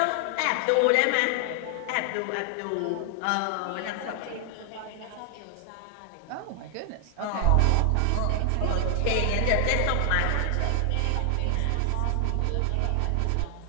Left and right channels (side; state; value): both; different; correlation 0.00